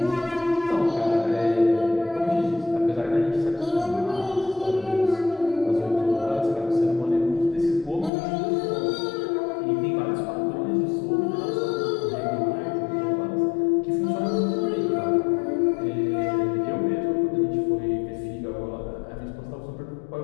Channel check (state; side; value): drops out; right; at 8.1 s